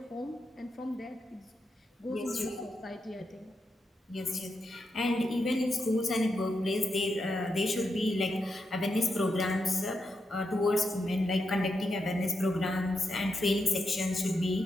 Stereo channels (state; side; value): normal; both; correlation 0.85